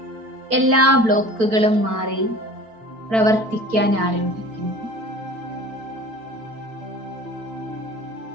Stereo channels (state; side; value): late; left; 4.5 ms